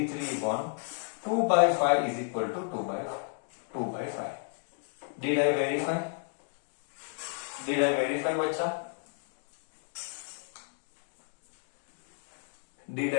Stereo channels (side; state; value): right; silent; 56 dB below the other